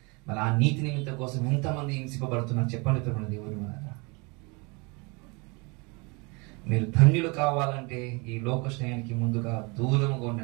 మరి ఆ నీతి నిమిత్తం కోసం ఎంతమంది హింసింపబడుతున్నారు చెప్పండి దేవుడు. మీరు ధన్యులు కావాలంటే ఈ లోక స్నేహానికి ముందుగా దూరముగా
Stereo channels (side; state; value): left; quieter; 29.2 dB